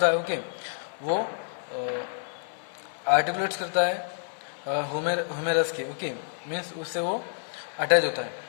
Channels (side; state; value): right; silent; 59 dB below the other